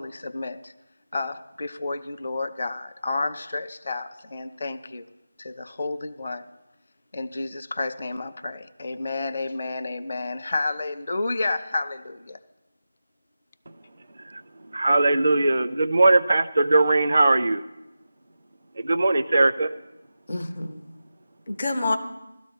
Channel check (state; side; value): inverted; both; correlation -0.91